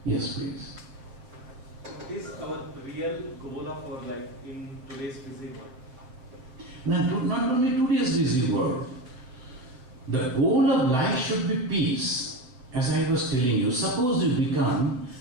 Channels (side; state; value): left; late; 7.8 ms